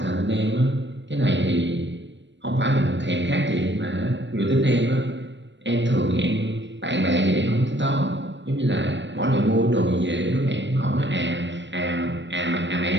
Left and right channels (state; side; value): late; left; 0.53 ms